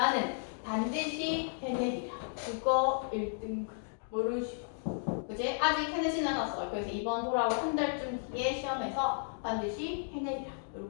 반드시 해내리라. 국어 1등급 모르는 식으로. 그치? 아직 해내진 않았어. 그래서 이번 돌아올 한 달쯤 뒤에 시험에서 반드시 해내리라.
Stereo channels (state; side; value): silent; right; digital silence